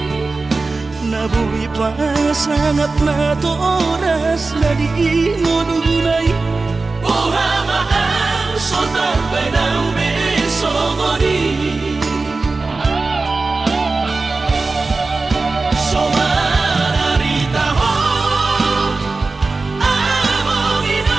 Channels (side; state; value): left; quieter; 3.7 dB